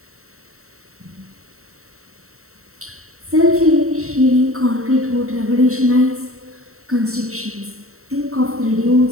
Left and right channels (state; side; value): late; left; 0.63 ms